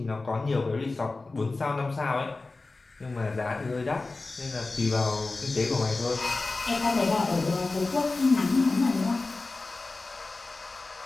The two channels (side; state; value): right; quieter; 3.5 dB